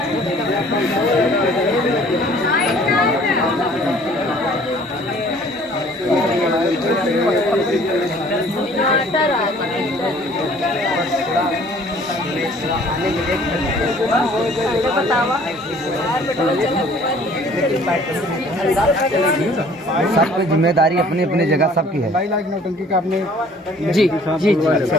सबकी जिम्मेदारी अपनी अपनी जगह सबकी है। 22 लाख नौटंकी का आपने जी जी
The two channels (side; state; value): both; normal; correlation 0.54